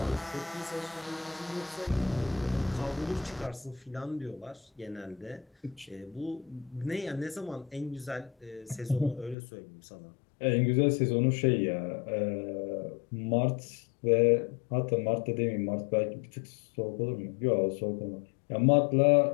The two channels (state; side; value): drops out; right; at 9.3 s